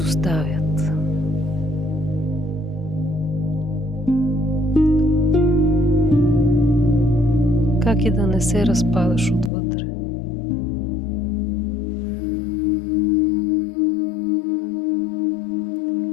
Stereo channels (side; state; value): right; drops out; at 9.5 s